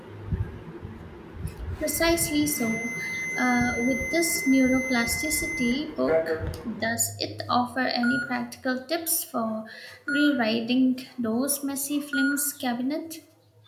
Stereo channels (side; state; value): both; identical; correlation 1.00